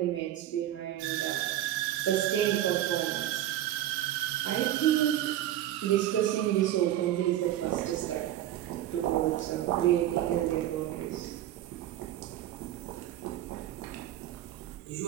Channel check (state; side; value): quieter; left; 12.7 dB